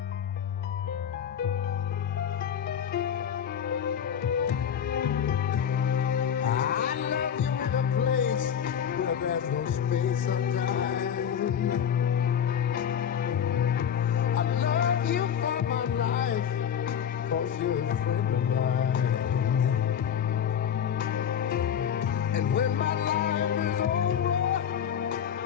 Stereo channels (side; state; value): right; quieter; 8.5 dB